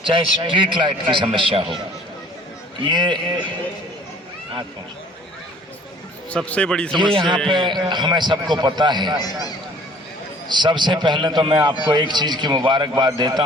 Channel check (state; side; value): normal; both; correlation 0.53